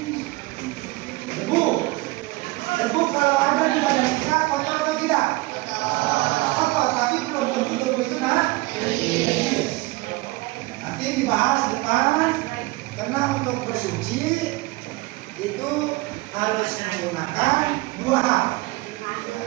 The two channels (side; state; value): left; quieter; 21.8 dB